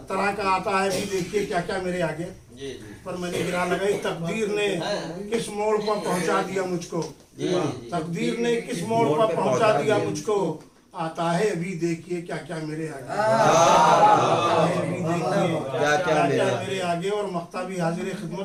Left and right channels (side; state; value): both; identical; correlation 1.00